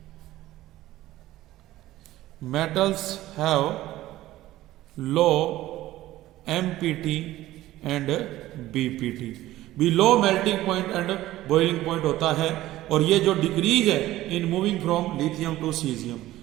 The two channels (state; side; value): quieter; left; 15.6 dB